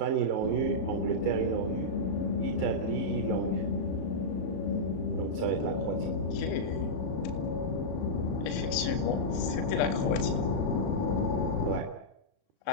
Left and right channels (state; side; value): late; right; 37 ms